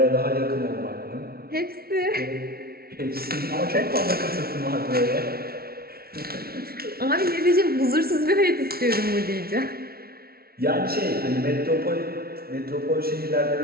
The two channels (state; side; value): late; left; 0.44 ms